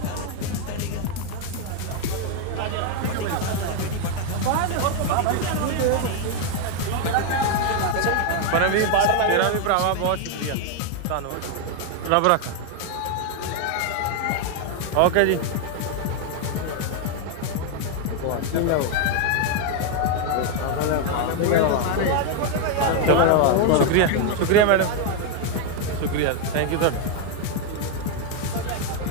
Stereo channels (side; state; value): both; different; correlation 0.01